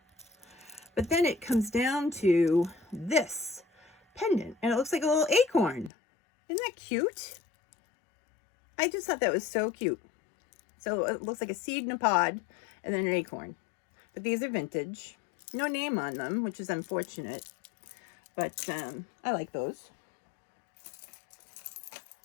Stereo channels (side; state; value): right; drops out; at 5.9 s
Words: But then it comes down to this pendant, and it looks like a little acorn. Isn't that cute? I just thought that was so cute. So it looks like a seed in a pod and then an acorn. But these are vintage. No name on them, which is unfortunate. But I like those.